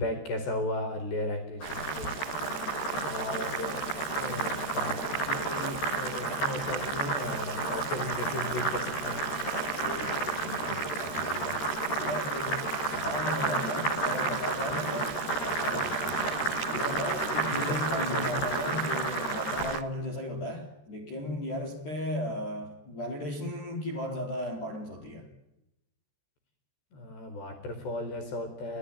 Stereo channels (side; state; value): right; late; 14 ms